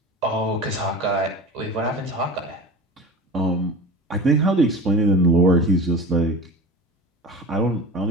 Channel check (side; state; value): both; normal; correlation 0.33